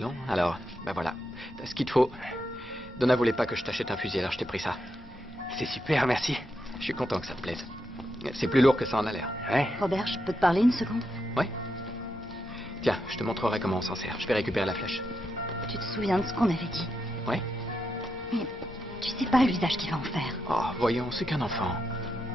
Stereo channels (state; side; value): normal; both; correlation 0.84